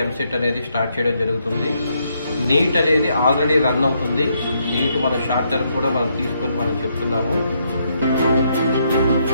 ఎంసెట్ అనేది స్టార్ట్ చేయడం జరుగుతుంది. నీట్ అనేది ఆల్రెడీ రన్ అవుతుంది. నీట్ మన షార్ట్ టర్మ్ కూడా మనం తీసుకొని మనం చెప్తున్నాము.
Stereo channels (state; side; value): inverted; both; correlation -0.75